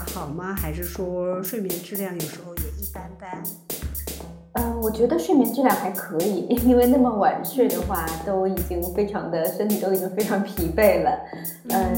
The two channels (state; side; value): identical; both; correlation 1.00